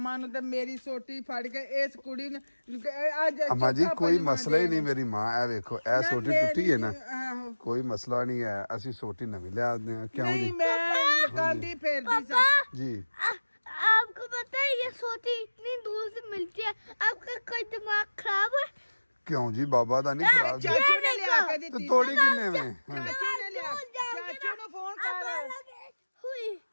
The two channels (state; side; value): inverted; both; correlation -1.00